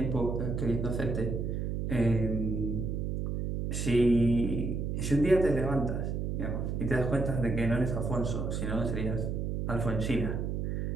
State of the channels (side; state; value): right; noise; hum, 1 dB below the sound